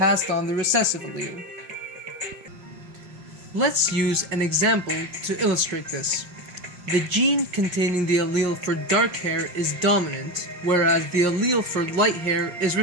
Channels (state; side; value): late; left; 5.6 ms